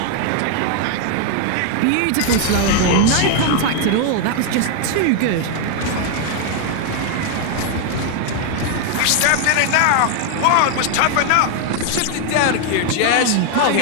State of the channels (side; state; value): both; different; correlation 0.00